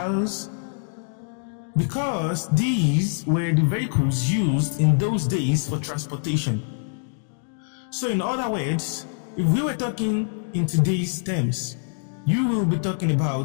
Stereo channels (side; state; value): right; silent; digital silence